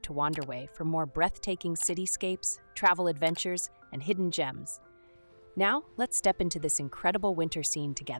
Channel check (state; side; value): inverted; both; correlation -1.00